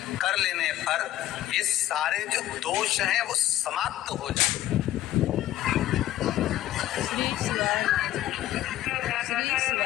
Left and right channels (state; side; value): quieter; right; 13.8 dB